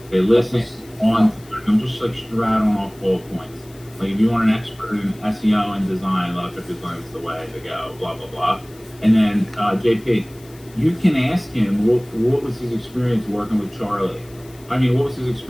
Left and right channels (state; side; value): noise; left; hiss, 25 dB below the sound